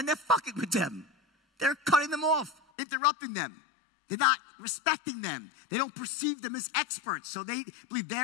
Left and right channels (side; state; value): right; drops out; at 2.6 s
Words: they're fucking with them. They're cutting them off, interrupting them. They're not respecting them. They don't perceive them as experts, so they believe